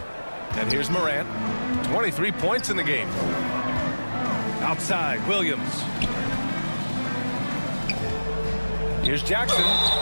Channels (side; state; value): both; inverted; correlation -1.00